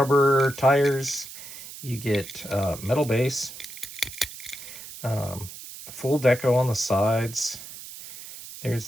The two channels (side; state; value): right; noise; hiss, 13 dB below the sound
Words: tires, you get metal base, full deco on the sides. There's